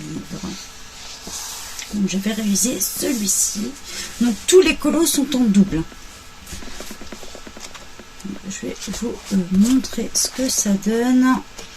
Donc, je vais réviser celui-ci. Donc, tous les colos sont en double. Je vais vous montrer ce que ça donne.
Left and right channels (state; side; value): identical; both; correlation 1.00